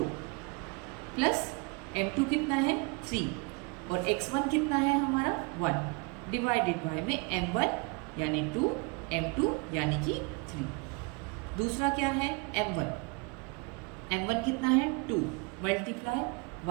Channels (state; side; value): quieter; left; 30.5 dB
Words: प्लस m2 कितना है 3 और x1 कितना है हमारा 1 डिवाइडेड बाय में m1 यानी 2, m2 यानी कि 3। दूसरा क्या है m1 कितना है 2 मल्टीप्लाई